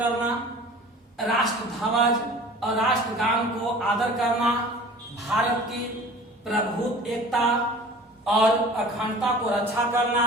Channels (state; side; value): normal; both; correlation 0.44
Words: राष्ट्र ध्वज और राष्ट्रगान को आदर करना, भारत की प्रभुत्व एकता और अखंडता को रक्षा करना,